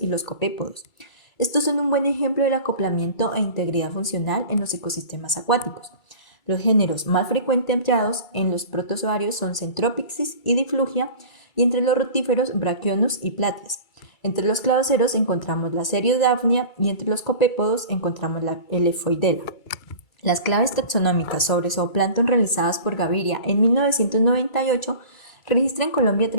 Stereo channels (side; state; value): right; late; 2.3 ms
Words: los copépodos. Estos son un buen ejemplo del acoplamiento e integridad funcional en los ecosistemas acuáticos. Los géneros más frecuentemente hallados en los protozoarios son Centropyxis y Diflugia, y entre los rotíferos Brachionus y Platies. Entre los cladoceros encontramos la Seriodaphnea y entre los copépodos encontramos la Lephoidea. Las claves taxonómicas sobre zooplancton realizadas por Gaviria en 1998 registran en Colombia